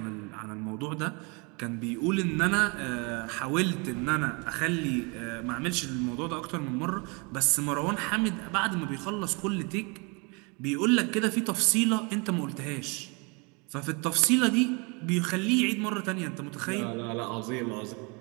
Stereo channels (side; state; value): left; quieter; 30.9 dB